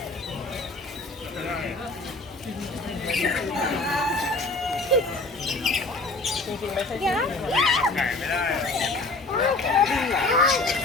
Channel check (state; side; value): quieter; right; 3.2 dB